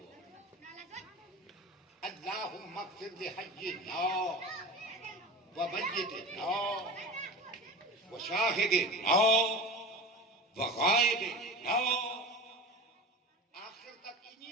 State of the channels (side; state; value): both; normal; correlation 0.32